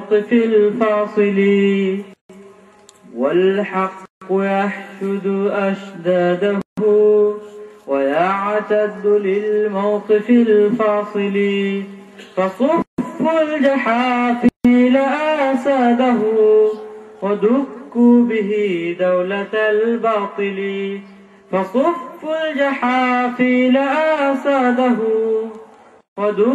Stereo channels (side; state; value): both; identical; correlation 1.00